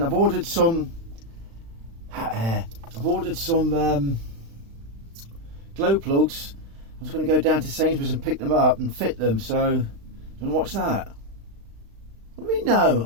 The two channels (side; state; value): left; late; 36 ms